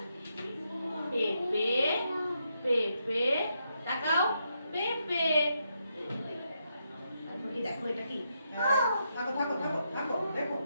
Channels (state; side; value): inverted; both; correlation -0.81